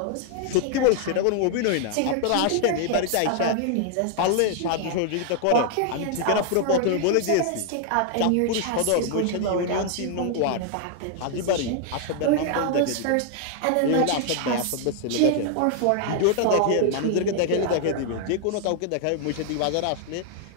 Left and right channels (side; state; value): both; different; correlation 0.00